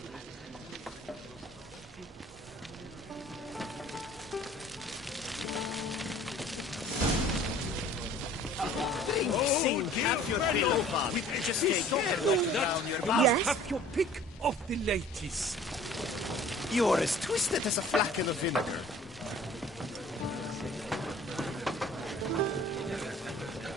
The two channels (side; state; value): both; normal; correlation 0.49